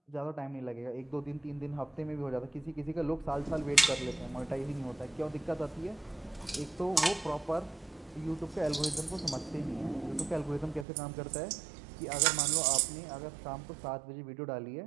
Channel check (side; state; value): left; drops out; at 10.9 s